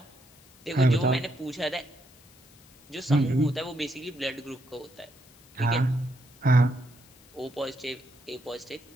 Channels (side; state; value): left; noise; hiss, 26 dB below the sound